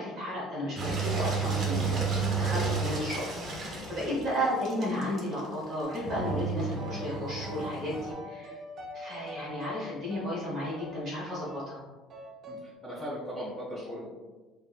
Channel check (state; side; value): normal; both; correlation 0.49